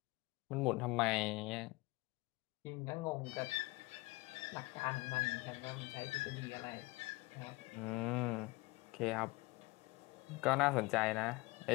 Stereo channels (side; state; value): right; quieter; 22.9 dB